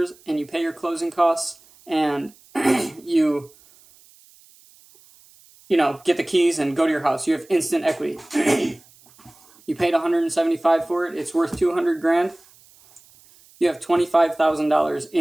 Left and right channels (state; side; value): noise; right; hiss, 28 dB below the sound